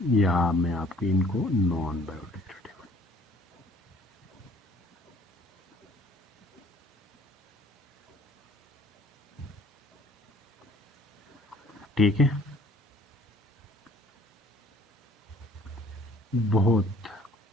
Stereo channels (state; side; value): normal; both; correlation 0.56